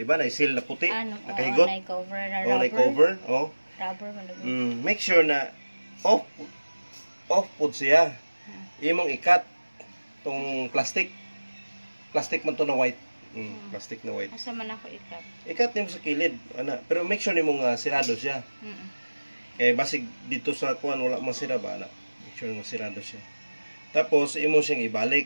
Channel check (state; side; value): inverted; both; correlation -1.00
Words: ba? Na seal na puti, nakahigot. Nay cover na rubber. Nay cover, oh. Rubber man. Make sure na off pud siya. Imong ikat tong plastic. Plastic man to na white. Plastic na white. Asa man ako ikat? Ikat nimo sa kilid, ana. Pero make sure nimo nga sirado siya. Kay basig dito sa kuan wala man sira ba ana. Make sure nga sirado siya. Tapos imo siyang